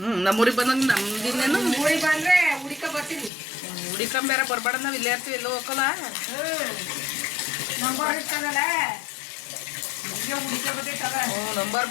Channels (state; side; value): drops out; right; at 3.3 s